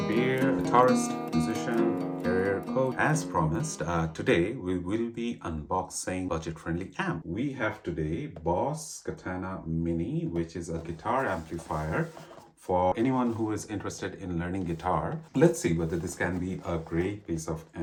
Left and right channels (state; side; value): identical; both; correlation 1.00